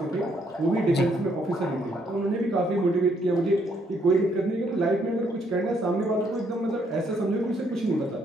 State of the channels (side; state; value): both; normal; correlation 0.71